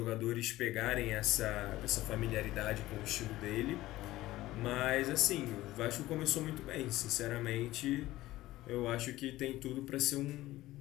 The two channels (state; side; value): quieter; right; 16.6 dB